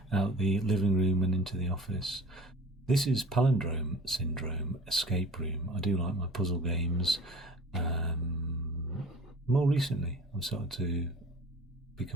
out the living room and into the office. This is Palindrome Syndrome Escape Room. I do like my puzzle games. More recently, I've started to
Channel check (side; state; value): both; normal; correlation 0.44